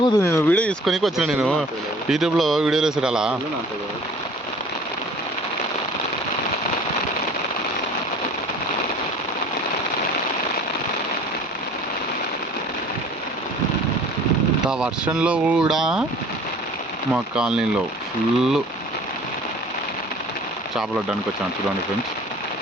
నేను వీడియో తీసుకొని వచ్చిన నేను యూట్యూబ్లో వీడియోలు వేసాడు అలా ఇంత వర్షంలో కూడా మా కాలనీలో ఫుల్ చేపలు వడ్డానికి వచ్చాను చూడండి ఫ్రెండ్స్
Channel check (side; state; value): both; normal; correlation 0.48